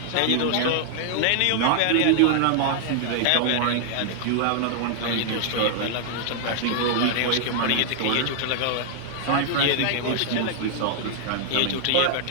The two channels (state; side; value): different; both; correlation -0.01